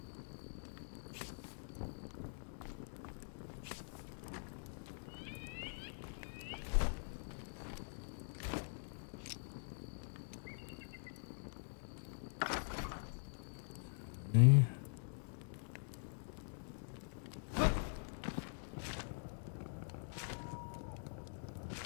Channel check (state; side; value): silent; right; digital silence